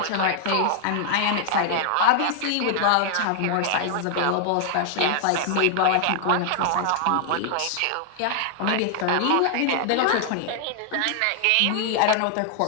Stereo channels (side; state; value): both; different; correlation 0.00